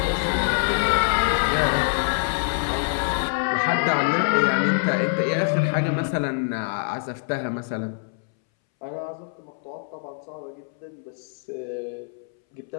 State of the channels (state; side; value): silent; right; 62 dB below the other